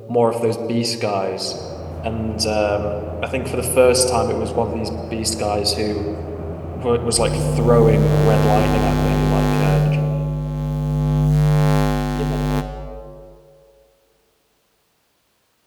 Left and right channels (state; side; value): identical; both; correlation 1.00